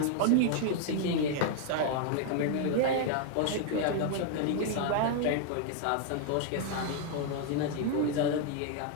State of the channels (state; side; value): different; both; correlation 0.00